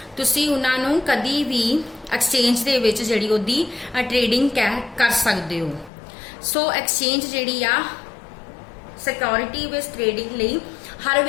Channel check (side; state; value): right; drops out; at 5.9 s